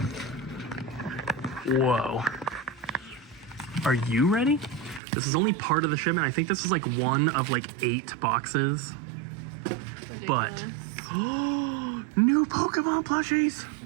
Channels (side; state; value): left; drops out; at 5.0 s